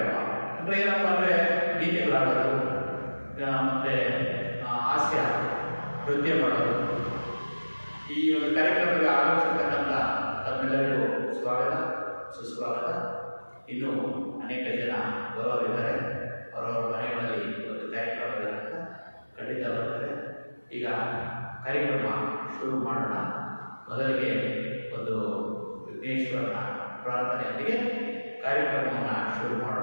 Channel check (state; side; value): inverted; both; correlation -1.00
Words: ಅಂದರೆ ಏನಪ್ಪ ಅಂದರೆ ಗೀತೆಗಳಾಡೋದು ಮತ್ತು ಹಾಸ್ಯ ನೃತ್ಯ ಮಾಡೋದು. ಈ ಒಂದು ಕಾರ್ಯಕ್ರಮಕ್ಕೆ ಆಗಮಿಸಿರ್ತಕ್ಕಂಥ ತಮ್ಮೆಲ್ಲರಿಗೂ ಸ್ವಾಗತ, ಸುಸ್ವಾಗತ. ಇನ್ನೂ ಅನೇಕ ಜನ ಬರೋರಿದ್ದಾರೆ, ಅವರವರ ಮನೆಗಳಲ್ಲಿ ಒಂದು ಕಾರ್ಯಕ್ರಮ ಇರೋದ್ರಿಂದ ಖಂಡಿತ ಬರ್ತಾರೆ. ಈಗ ಕಾರ್ಯಕ್ರಮ ಶುರು ಮಾಡೋಣ. ಮೊದಲಿಗೆ ಒಂದು ವಿಘ್ನೇಶ್ವರನ ಪ್ರಾರ್ಥನೆಯೊಂದಿಗೆ ಕಾರ್ಯಕ್ರಮವನ್ನು ಶುರು ಮಾಡೋಣ.